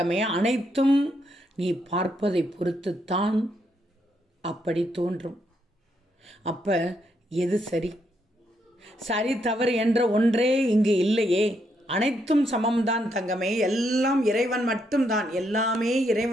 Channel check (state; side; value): normal; both; correlation 0.77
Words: அனைத்தும் நீ பார்ப்பதை பொறுத்துத்தான் அப்படி தோன்றும். அப்ப எது சரி, சரி தவறு என்ற ஒன்றே இங்கு இல்லையே. அனைத்தும் சமம்தான் தங்கமே. எல்லாம் இறைவன் மட்டும்தான். எல்லாமே